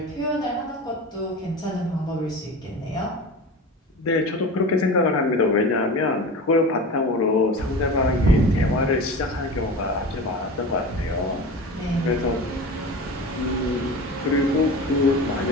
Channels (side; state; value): both; normal; correlation 0.32